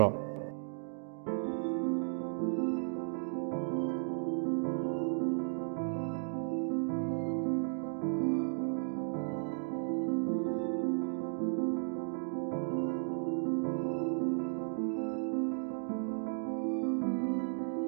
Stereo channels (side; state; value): left; silent; digital silence